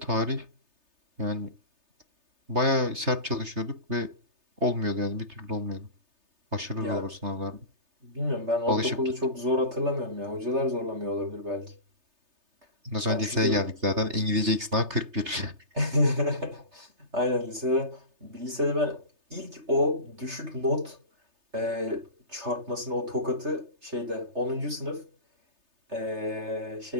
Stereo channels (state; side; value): late; left; 3.3 ms